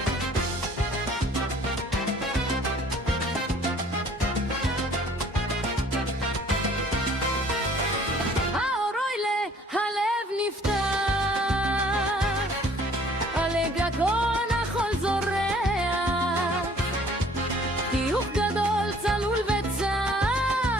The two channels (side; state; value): both; normal; correlation 0.56